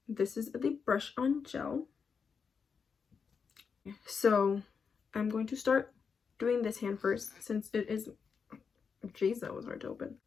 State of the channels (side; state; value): right; quieter; 5.9 dB